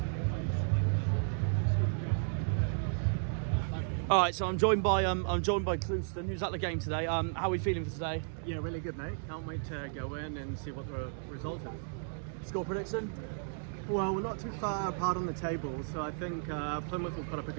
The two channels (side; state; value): left; silent; digital silence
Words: All right, so I'm joined by Clouston, who's at the game today. How are we feeling for today? Yeah, really good, mate. Can't wait to go in and see what the result is. Score prediction? Well, we're not too far apart on the table, so I think Plymouth will put up a